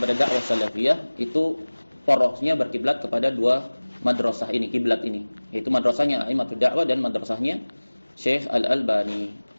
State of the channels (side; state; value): both; inverted; correlation -1.00